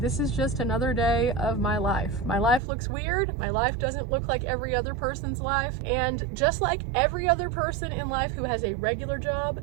is just another day of my life. My life looks weird. My life doesn't look like every other person's life, and just like every other person in life who has a regular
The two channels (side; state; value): left; drops out; at 2.6 s